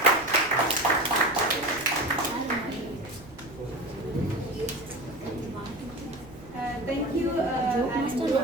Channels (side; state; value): right; noise; rumble, 20 dB below the sound